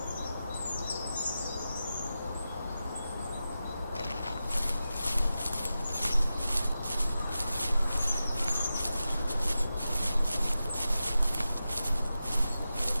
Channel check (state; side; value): inverted; both; correlation -0.92